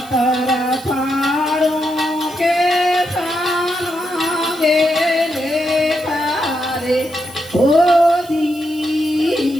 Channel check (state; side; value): noise; right; hiss, 21 dB below the sound